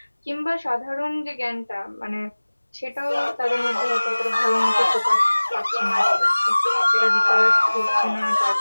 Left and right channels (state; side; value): inverted; both; correlation -1.00